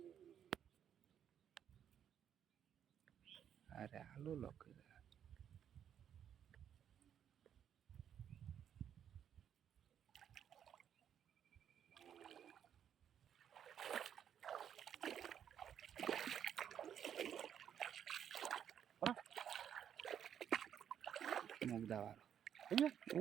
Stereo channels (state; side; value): quieter; left; 9.2 dB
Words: আরে আলু লোক মুখ দেওয়ার